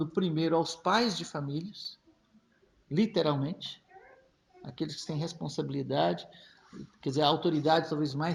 primeiro, aos pais de famílias, literalmente, aqueles que têm responsabilidade, quer dizer, a autoridade talvez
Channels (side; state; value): both; identical; correlation 1.00